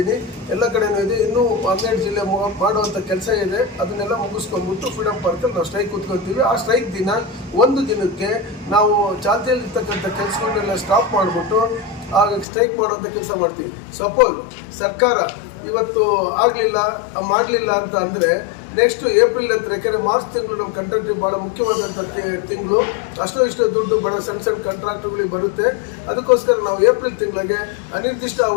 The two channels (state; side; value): drops out; right; at 12.5 s